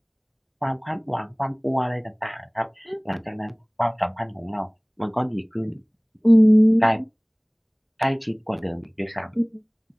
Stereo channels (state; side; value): identical; both; correlation 1.00